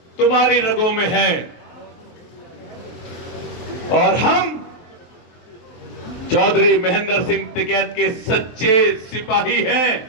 तुम्हारी रगों में है और हम चौधरी महेंद्र सिंह टिकैत के सच्चे सिपाही हैं,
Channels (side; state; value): right; late; 23 ms